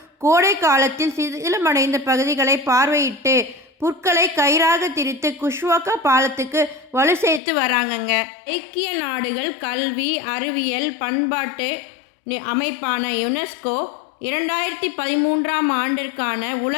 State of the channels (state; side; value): drops out; right; at 7.4 s